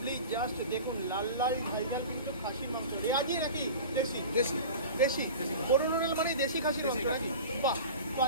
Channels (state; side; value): inverted; both; correlation -0.35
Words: জাস্ট দেখুন লাল লাল ঝাল ঝাল কিন্তু খাসির মাংস রেয়াজি নাকি দেশি? দেশি দেশি দেশি। বরুণ হোটেল মানে দেশি খাসির মাংস দেশি খাসি। নাকি? বাহ, তো